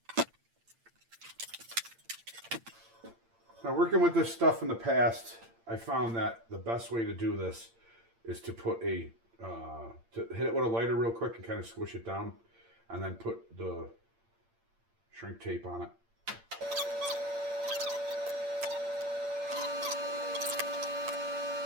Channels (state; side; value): late; left; 8.8 ms